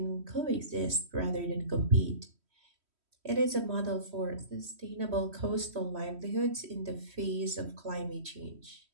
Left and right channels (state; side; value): late; left; 3.1 ms